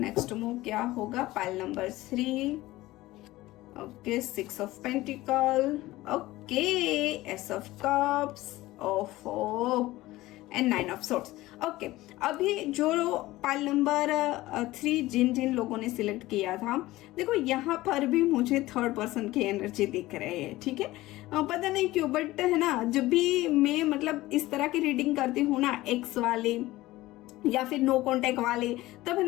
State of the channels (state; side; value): quieter; right; 17.8 dB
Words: मूव क्या होगा। Pile number 3, okay 6 of pentacle, okay S of cups, ओफो एंड 9 ऑफ सोर्ड्स। ओके, अभी जो पाइल नंबर 3 जिन जिन लोगों ने सिलेक्ट किया था, देखो यहाँ पर भी मुझे थर्ड पर्सन की एनर्जी दिख रही है, ठीक है। पता नहीं क्यों, बट है ना, जब भी मैं मतलब इस तरह की रीडिंग करती हूँ ना, एक्स वाले या फिर नो कांटेक्ट वाले, तब है